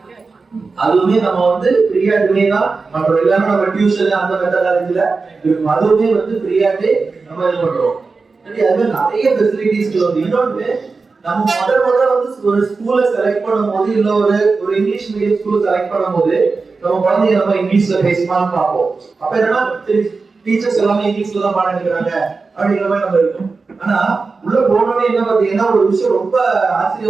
அதுவுமே நம்ம வந்து ஃப்ரீயாவே தான் பண்றோம். இல்லாம நம்ம டியூஷன் அந்த மெத்தடாலஜில அதுவுமே வந்து ஃப்ரீயாவே நம்ம இது பண்றோம். சரி, அது நிறைய ஃபெசிலிட்டிஸ் வந்து இன்னொன்று நம்ம முதல்ல வந்து ஒரு ஸ்கூலை செலக்ட் பண்ணும்போது இல்ல ஒரு இங்கிலீஷ் மீடியம் ஸ்கூலை செலக்ட் பண்ணும்போது நம்ம குழந்தைங்க நம்ம இங்கிலீஷ்ல பேசலாம்னு பார்ப்போம். அப்ப என்னன்னா டீச்சர்ஸ் எல்லாமே இங்கிலீஷ்ல தான் பாடம் எடுக்கிறாங்க அப்படிங்கிற மாதிரி நம்ம இருக்கும். ஆனா உள்ள போனோடனே என்ன பாத்தீங்கன்னா ஒரு விஷயம் ரொம்ப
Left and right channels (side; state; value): left; quieter; 4.3 dB